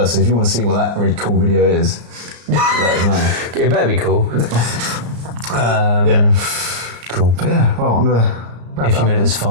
So if you want to see what that really cool video is, let us know. It better be cool. Yeah. Cool. But yeah, well, I'm going to wrap If you made it this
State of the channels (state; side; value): late; left; 34 ms